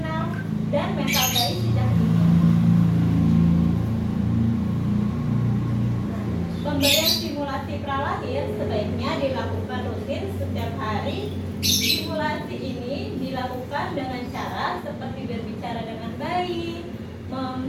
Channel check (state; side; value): identical; both; correlation 1.00